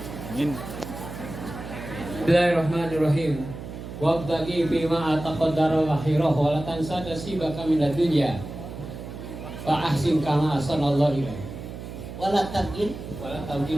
Amin. Bismillahirrahmanirrahim. Wabtaghi bima ataqaddara akhirah wa la tansa nasibaka minad dunya. Fa ahsin kama ahsanallahu ilaik. Wala tabgin Wa la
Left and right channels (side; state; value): right; noise; hum, 10 dB below the sound